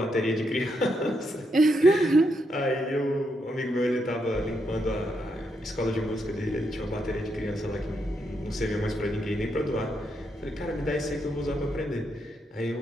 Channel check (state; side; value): normal; both; correlation 0.80